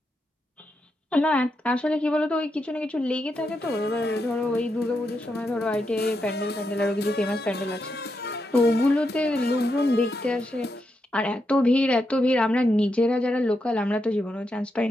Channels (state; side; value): normal; both; correlation 0.84